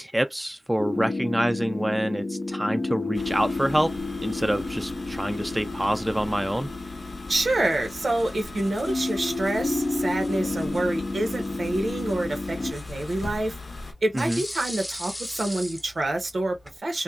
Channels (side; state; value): both; normal; correlation 0.96